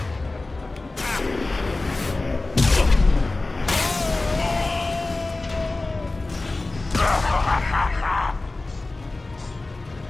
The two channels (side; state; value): right; quieter; 3.1 dB